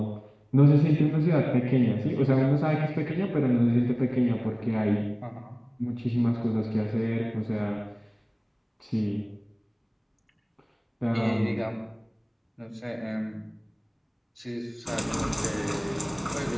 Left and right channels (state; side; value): identical; both; correlation 1.00